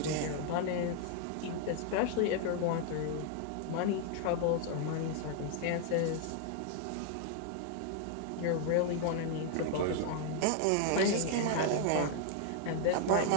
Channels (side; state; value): both; different; correlation 0.00